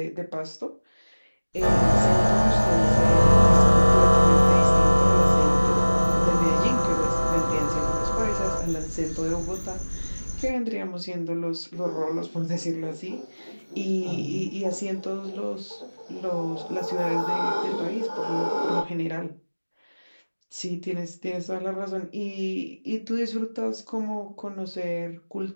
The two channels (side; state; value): both; inverted; correlation -1.00